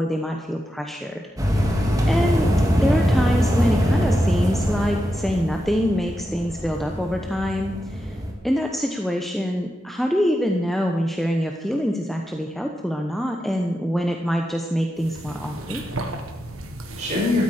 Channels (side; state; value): both; normal; correlation 0.88